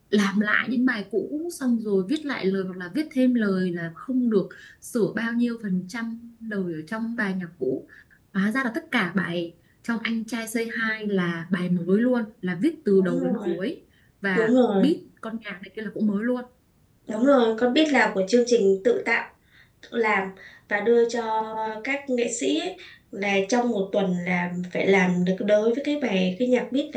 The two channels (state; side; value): identical; both; correlation 1.00